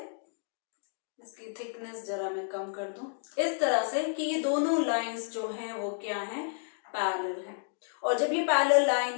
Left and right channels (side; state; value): right; silent; digital silence